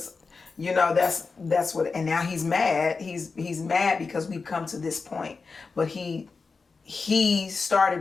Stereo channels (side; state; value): right; quieter; 4.5 dB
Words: you know, that's what, and now he's mad. He's mad because we've come to this point. But he